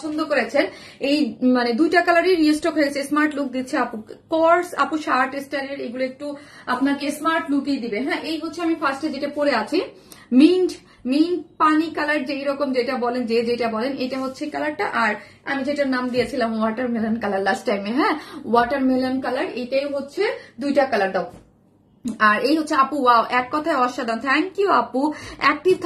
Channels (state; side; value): identical; both; correlation 1.00